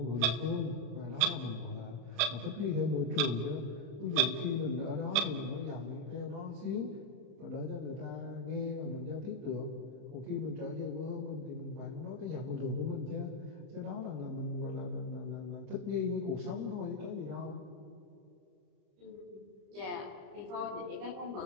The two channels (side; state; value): left; late; 34 ms